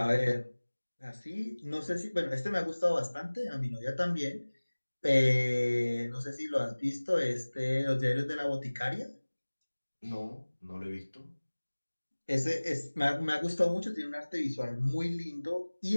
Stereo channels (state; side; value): inverted; both; correlation -1.00